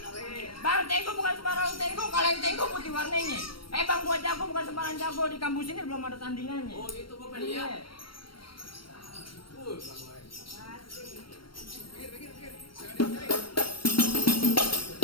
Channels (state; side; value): late; right; 0.73 ms